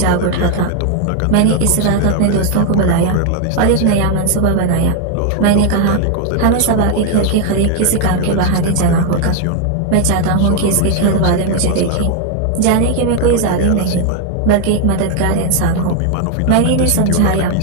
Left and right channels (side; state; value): both; different; correlation 0.00